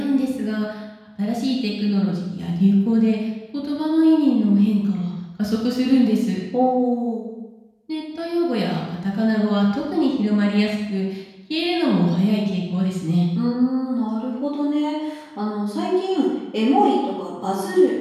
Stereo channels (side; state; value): both; identical; correlation 1.00